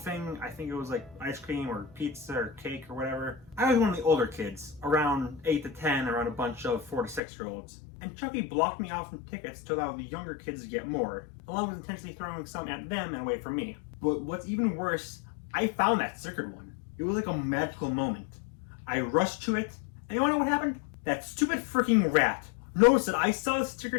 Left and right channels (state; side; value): drops out; right; at 7.2 s